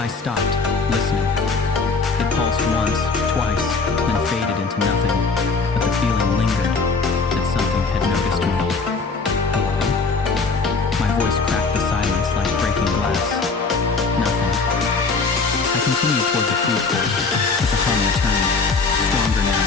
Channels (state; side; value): quieter; right; 4.3 dB